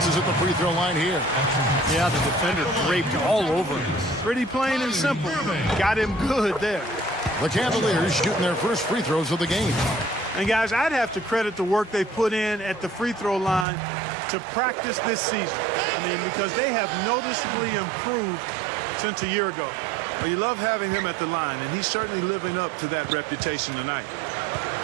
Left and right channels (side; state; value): left; drops out; at 13.7 s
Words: at the free throw line here. Yeah, the defender draped all over him. Pretty plain and simple. Got him good there. The Cavaliers shooting their first free throws of the game. And, guys, I'd have to credit the work they put in at the free throw line to practice this season. I mean, because they have noticeably improved since a year ago. Well, you love having him at the line, and he's certainly living up to that reputation tonight.